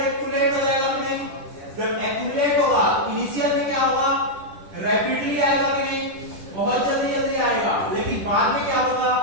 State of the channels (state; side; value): late; left; 10 ms